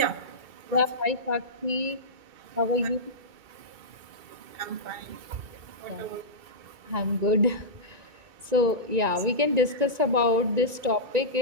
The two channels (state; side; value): late; left; 1.9 ms